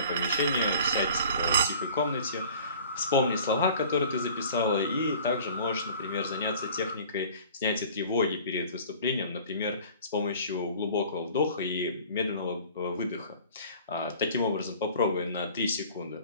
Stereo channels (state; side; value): inverted; both; correlation -0.47